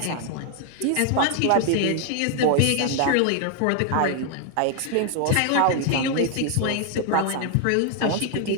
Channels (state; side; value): different; both; correlation 0.00